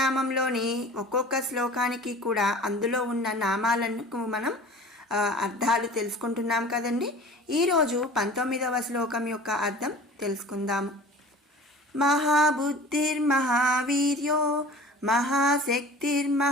ఒక్కొక్క శ్లోకానికి కూడా అందులో ఉన్న నామాలకు మనం అర్థాలు తెలుసుకుంటున్నాం కదండి. ఈరోజు 19వ శ్లోకం యొక్క అర్థం తెలుసుకుందాము. మహాబుద్ధిర్మహావీర్యో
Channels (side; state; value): both; normal; correlation 0.42